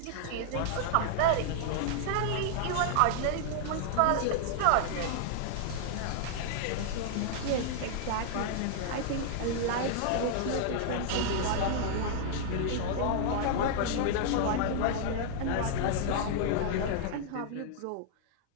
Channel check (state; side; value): different; both; correlation -0.01